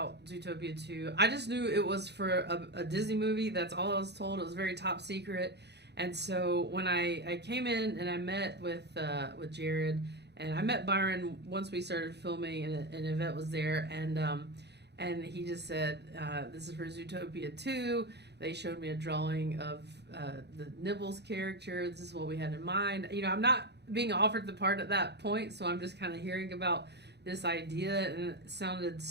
Zootopia 2, I just knew it was for a Disney movie. That's all I was told. It was very top secret. And so when I came in and I met with Jared, and I met Byron once we started filming, and Yvette was there, and he just said, this is for Zootopia 2. They showed me a drawing of the Nibbles character. This is what we had in mind. I'm not being offered the part at that point, so I'm just kind of hearing about this idea, and it sounded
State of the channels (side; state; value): left; late; 0.49 ms